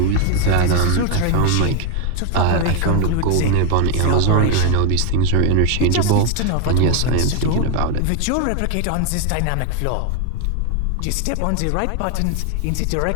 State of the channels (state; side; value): different; both; correlation 0.01